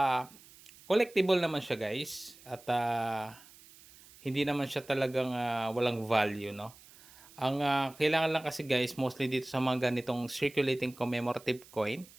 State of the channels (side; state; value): right; noise; hiss, 23 dB below the sound